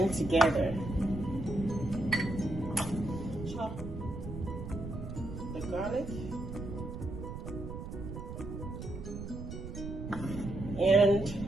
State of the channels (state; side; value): noise; right; rumble, 8 dB below the sound